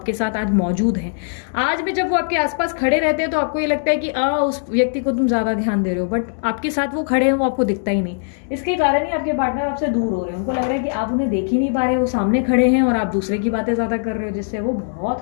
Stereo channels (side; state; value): right; silent; 66 dB below the other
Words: साथ आज मौजूद हैं। आज भी जब वो आपके आसपास खड़े रहते हैं तो आपको ये लगता है कि उस व्यक्ति को तुम ज्यादा ध्यान दे रहे हो, बट आपके साथ वो खड़े हैं, वो आपको दिखता ही नहीं। इसके कारण ही आपके पार्टनर आपसे दूर हो रहे हैं। उनको लग रहा है कि आप उन्हें देख ही नहीं पा रहे, वो सामने खड़े हैं और आप दूसरे की बातें ज्यादा कर रहे हो, जिससे वो